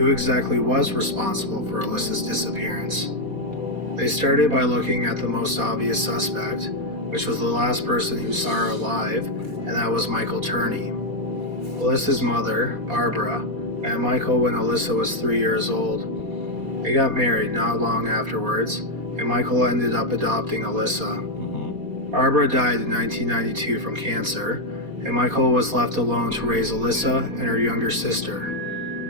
exactly was responsible for Alyssa's disappearance. They started by looking at the most obvious suspect, which was the last person who saw her alive, and that was Michael Turney. Alyssa's mother, Barbara, met Michael when Alyssa was 3 years old. They got married not long afterwards, and Michael ended up adopting Alyssa. Barbara died in 1992 from cancer, and Michael was left alone to raise Alyssa and her younger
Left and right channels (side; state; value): left; late; 4.2 ms